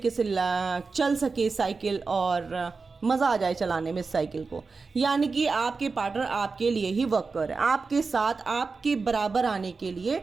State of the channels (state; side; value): quieter; left; 4.4 dB